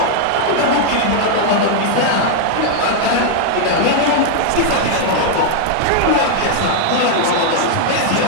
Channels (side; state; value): both; different; correlation 0.00